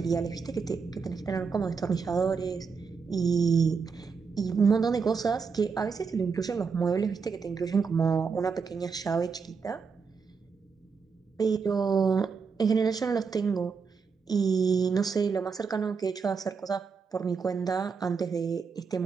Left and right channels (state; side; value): quieter; left; 5.4 dB